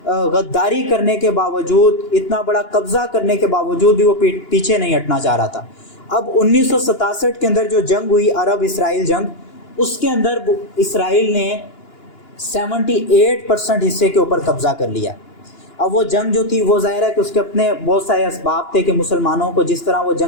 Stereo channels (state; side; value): late; right; 2.9 ms